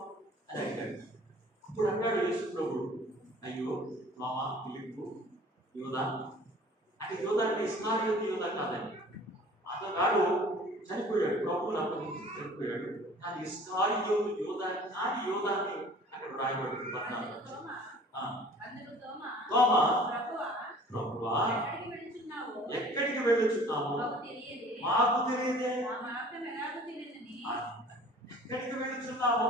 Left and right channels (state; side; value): normal; both; correlation 0.48